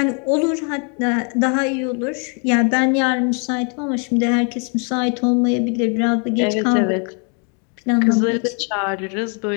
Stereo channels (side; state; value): right; quieter; 38.4 dB